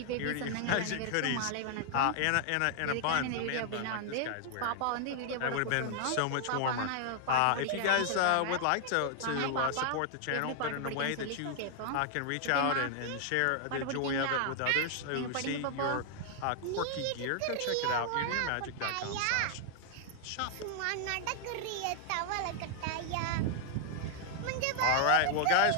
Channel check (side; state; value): both; different; correlation -0.01